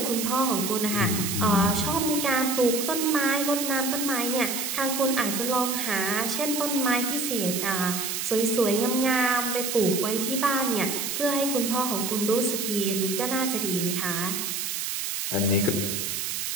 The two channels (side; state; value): right; noise; hiss, 2 dB below the sound